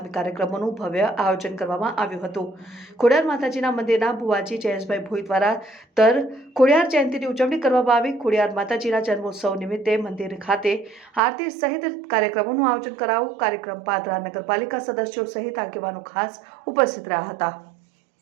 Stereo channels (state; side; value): drops out; left; at 11.2 s